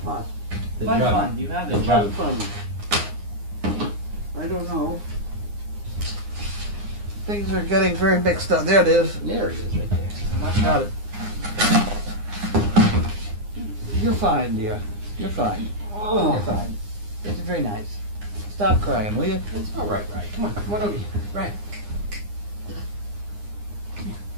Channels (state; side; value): late; left; 9.7 ms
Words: pot? Fun. You have it. Fun. I don't know. Things are getting very mixed up. There it is. There it is right there. Got it. You're fine, dear. You're fine. Oh. You're fine. It's very nice. Stop crying, will you? It's all right, right. Come on over here. Right.